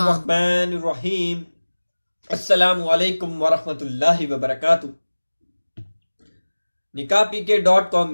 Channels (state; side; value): inverted; both; correlation -1.00